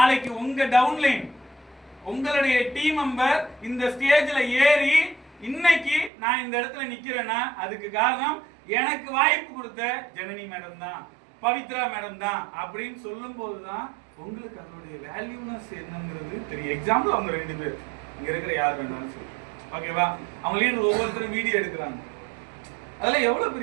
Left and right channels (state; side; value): drops out; left; at 6.1 s